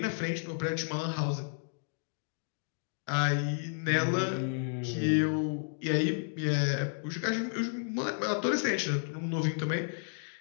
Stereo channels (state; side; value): silent; right; digital silence